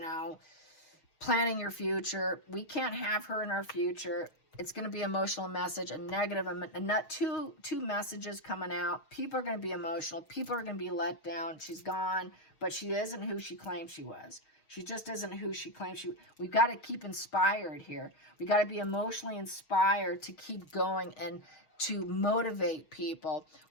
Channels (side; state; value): right; late; 6.3 ms